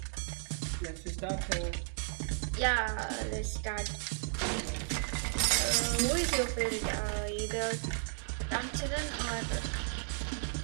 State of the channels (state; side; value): silent; left; 55 dB below the other